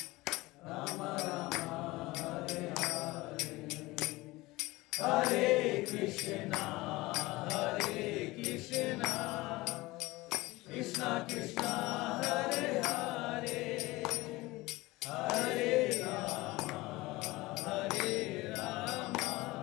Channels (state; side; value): quieter; right; 20.5 dB